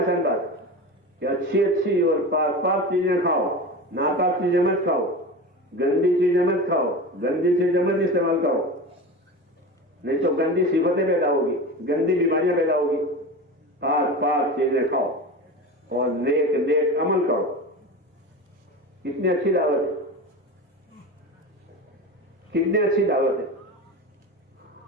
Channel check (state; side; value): normal; both; correlation 0.28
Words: بات کہ اچھی اچھی اور پاک پاک چیزیں کھاؤ، ناپاک چیزیں مت کھاؤ، گندی چیزیں مت کھاؤ، گندی چیزیں مت استعمال کرو، نہیں تو گندی صفتیں پیدا ہوگی، گندی بیماریاں پیدا ہوگی. پاک پاک چیزیں کھاؤ اور نیک نیک عمل کرو. کتنی اچھی دعوت ہے، کتنی اچھی دعوت ہے.